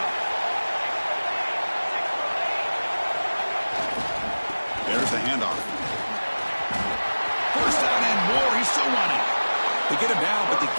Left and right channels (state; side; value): inverted; both; correlation -1.00